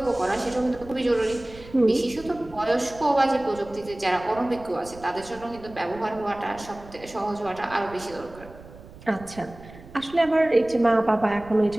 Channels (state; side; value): noise; right; rumble, 18 dB below the sound